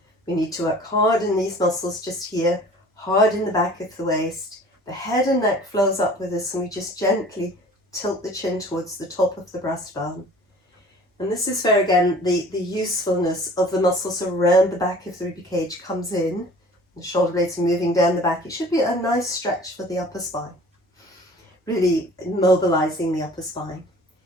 We need to work hard in these muscles just here, hard in the back of the waist. The head and neck flows up with us, and we just gently tilt the chin towards the top of the breastbone. And this is where, again, the usefulness of the muscles around the back of the rib cage comes in. The shoulder blades are moving down the back. It should be a nice stretch for the upper spine, really mobilizing the upper spine.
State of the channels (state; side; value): normal; both; correlation 0.47